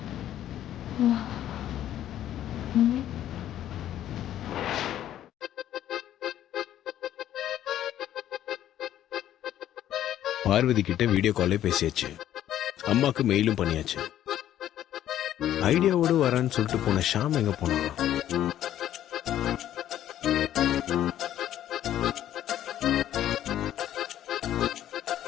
பார்வதி கிட்ட வீடியோ காலே பேசியாச்சு, அம்மாக்கு மெயிலும் பண்ணியாச்சு. ஐடியாவோடு வரேன்னு சொல்லிட்டு போன ஷாம் எங்க போனாங்க?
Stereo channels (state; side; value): quieter; right; 11.8 dB